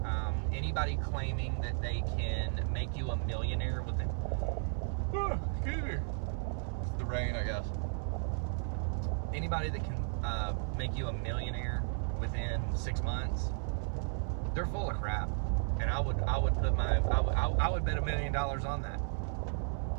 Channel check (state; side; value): silent; left; 55 dB below the other